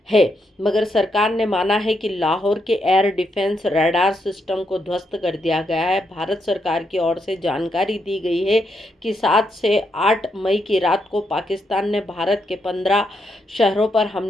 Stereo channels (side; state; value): both; normal; correlation 0.80